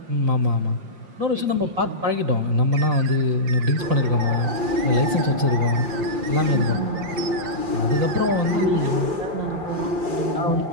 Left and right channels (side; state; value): left; late; 5.7 ms